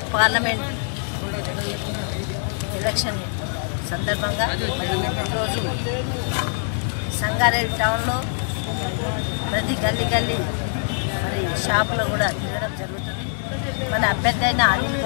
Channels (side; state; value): right; silent; 63 dB below the other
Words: parliament election సందర్భంగా ఈరోజు సంగారెడ్డి టౌన్లో ప్రతి గల్లీ మరి షాపులో కూడా తిరగడం జరుగుతుంది. మన అభ్యర్థి అయిన అనిల్